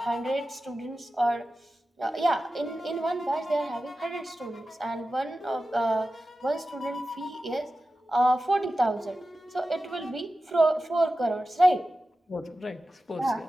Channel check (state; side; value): normal; both; correlation 0.93